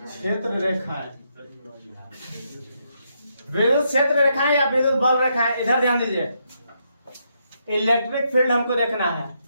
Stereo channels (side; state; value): both; inverted; correlation -0.78